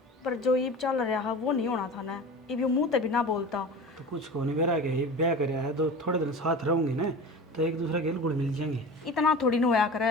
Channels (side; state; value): both; normal; correlation 0.34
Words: पर जो ईब चल रहा है वो नहीं होना था ना। ईब यो मुंह ते भी ना बोलता। तो कुछ को नहीं बेरा के ब्याह कराया है तो थोड़े दिन साथ रहूंगी ना तो एक दूसरे के गुड़ मिल जाएंगे। इतना थोड़ी न होया